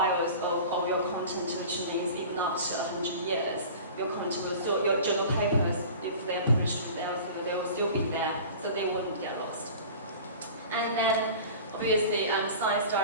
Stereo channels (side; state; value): both; inverted; correlation -0.39